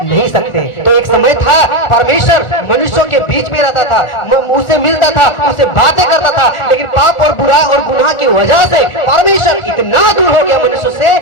नहीं सकते। तो एक समय था परमेश्वर मनुष्यों के बीच में रहता था, उससे मिलता था, उससे बातें करता था, लेकिन पाप और बुरा और गुनाह की वजह से परमेश्वर इतना दूर हो गया मनुष्य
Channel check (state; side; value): late; right; 1.4 ms